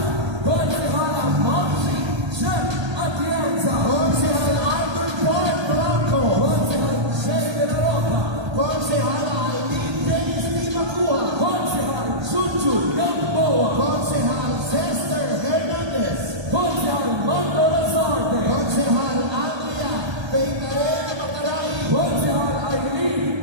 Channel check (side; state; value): left; late; 1.3 ms